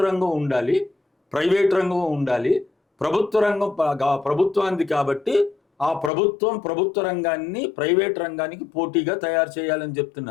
రంగం ఉండాలి, ప్రైవేట్ రంగం ఉండాలి. ప్రభుత్వ రంగం ప్రభుత్వానికి కాబట్టి ఆ ప్రభుత్వ రంగాన్ని ప్రైవేట్ రంగానికి పోటీగా తయారు చేయాలని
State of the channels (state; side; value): drops out; right; at 6.1 s